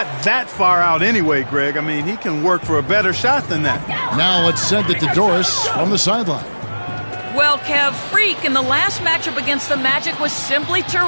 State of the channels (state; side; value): inverted; both; correlation -1.00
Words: that far out anyway, Greg. I mean, he can work for a better shot than that. Now it's sent it to Doris from the sideline. Well, Kev, Freak in the last matchup against the Magic was simply